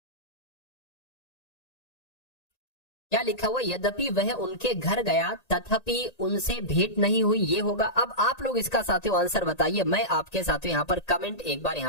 क्या लिखा हुआ, यद्यपि वह उनके घर गया तथापि उनसे भेंट नहीं हुई, ये होगा। अब आप लोग इसका साथियों आंसर बताइए, मैं आपके साथियों यहाँ पर कमेंट एक बार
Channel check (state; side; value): late; right; 1.8 ms